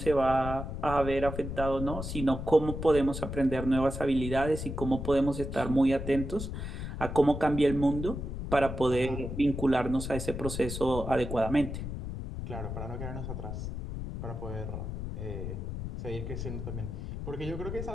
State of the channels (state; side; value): noise; left; rumble, 6 dB below the sound